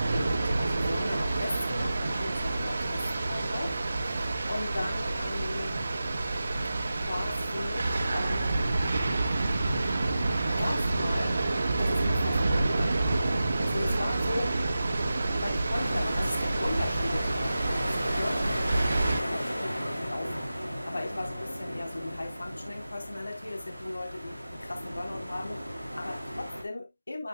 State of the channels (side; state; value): both; inverted; correlation -0.94